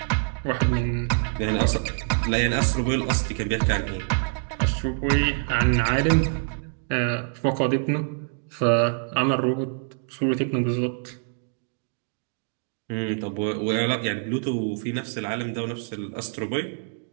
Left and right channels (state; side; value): silent; left; digital silence